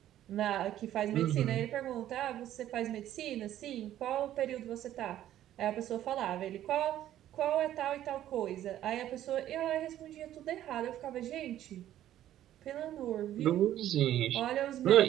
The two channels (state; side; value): quieter; left; 12.4 dB